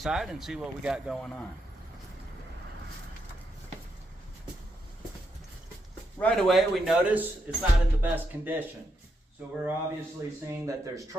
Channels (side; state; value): both; normal; correlation 0.81